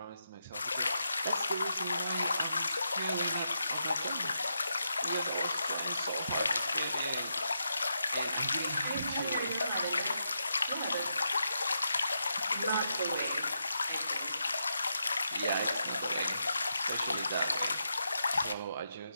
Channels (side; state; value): both; inverted; correlation -0.84